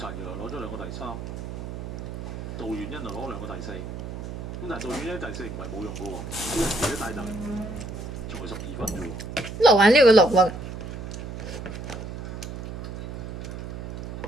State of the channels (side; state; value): right; noise; hum, 7 dB below the sound